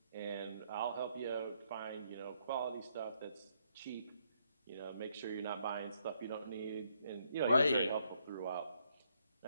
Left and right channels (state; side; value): inverted; both; correlation -0.74